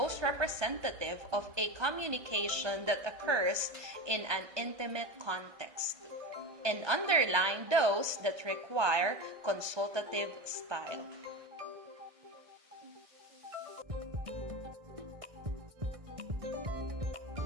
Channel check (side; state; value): left; late; 1.3 ms